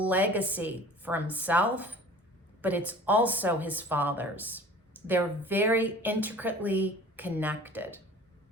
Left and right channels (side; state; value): both; normal; correlation 0.44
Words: for himself, but it's also his father's. They're very intricately connected.